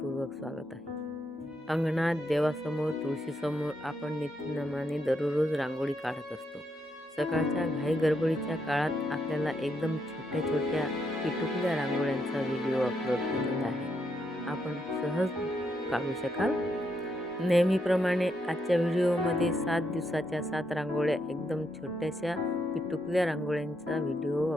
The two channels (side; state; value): both; normal; correlation 0.79